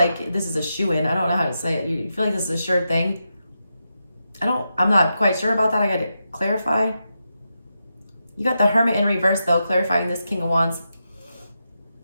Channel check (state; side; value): inverted; both; correlation -0.87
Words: this is a shoo-in. I don't know how to say it. You feel like this is a sure thing. I'm not quite sure about that. I got to clarify. You got the Hermit in reverse though, clarifying this King of Wands.